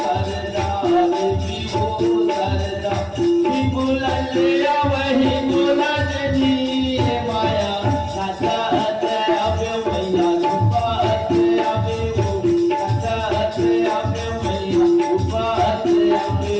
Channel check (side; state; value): both; identical; correlation 1.00